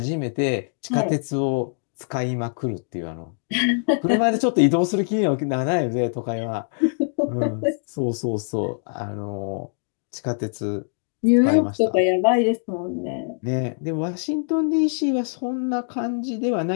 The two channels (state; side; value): silent; right; digital silence